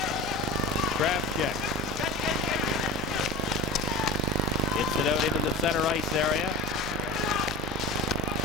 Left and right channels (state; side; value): normal; both; correlation 0.33